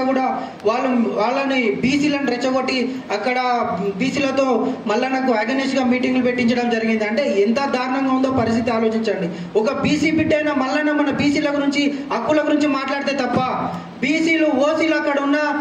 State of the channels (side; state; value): both; identical; correlation 1.00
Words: కూడా వాళ్ళని బీసీలను రెచ్చగొట్టి అక్కడ బీసీలతో మల్లన్నకు అగెనిస్ట్గా మీటింగ్లు పెట్టించడం జరిగింది. అంటే ఎంత దారుణంగా ఉందో పరిస్థితి ఆలోచించండి. ఒక బీసీ బిడ్డ అయిన మల్లన్న మన బీసీల గురించి హక్కుల గురించి మాట్లాడితే తప్ప బీసీలు ఓసీలు అక్కడ ఉన్న